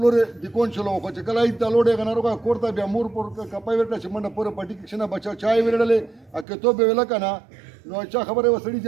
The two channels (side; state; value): left; drops out; at 6.5 s